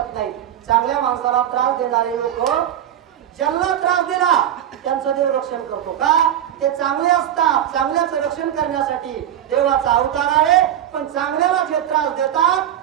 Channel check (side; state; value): left; quieter; 10.9 dB